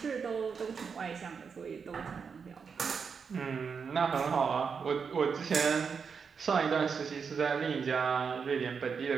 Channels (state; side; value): quieter; left; 5.9 dB